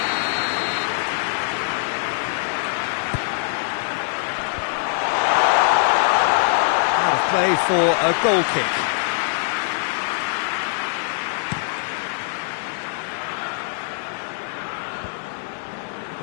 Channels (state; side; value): silent; right; digital silence